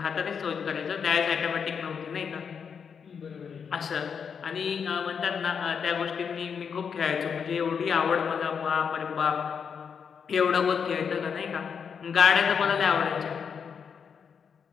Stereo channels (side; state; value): right; quieter; 6.7 dB